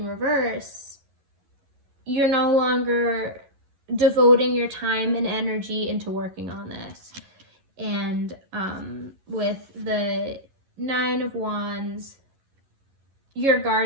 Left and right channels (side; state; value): left; late; 11 ms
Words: reverse, you're no longer devoting your time and energy into working on this. And with the Nine of Wands, you're